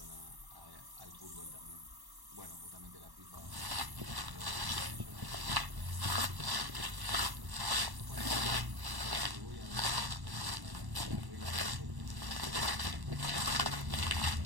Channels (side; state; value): left; late; 1.1 ms